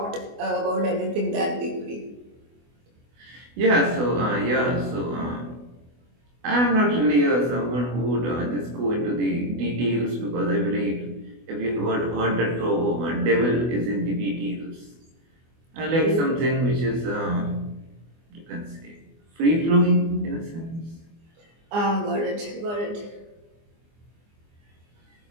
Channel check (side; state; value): left; late; 24 ms